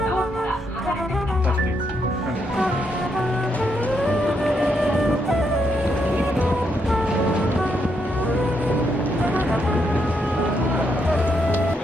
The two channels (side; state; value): both; normal; correlation 0.78